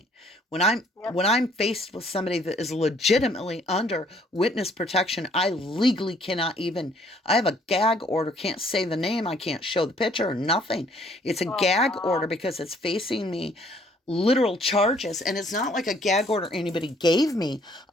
When I'm faced with somebody that is legitimately under witness protection, I legally cannot even. I have a gag order. Can't say the name. I can't show the picture or nothing. It's a gag order because it's facing me literal charges, and it's not like a gag order anybody gave me.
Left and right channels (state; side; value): normal; both; correlation 0.62